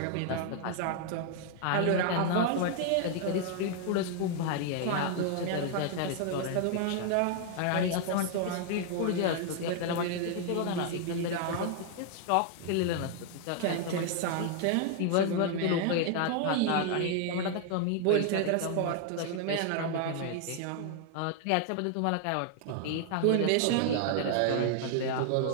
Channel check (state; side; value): different; both; correlation 0.00